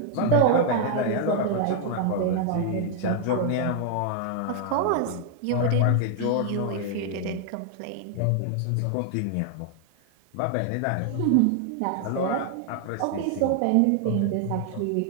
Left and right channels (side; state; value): both; different; correlation 0.00